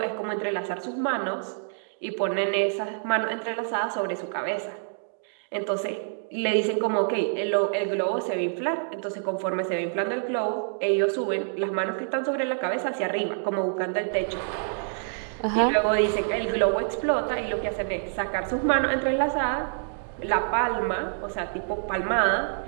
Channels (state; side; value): silent; left; digital silence